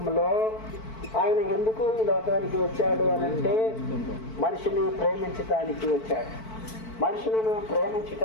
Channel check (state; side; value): late; right; 4.5 ms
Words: ఆయన ఎందుకు ఈ లోకానికి వచ్చాడు అనంటే మనిషిని ప్రేమించటానికి వచ్చాడు. మనుషులను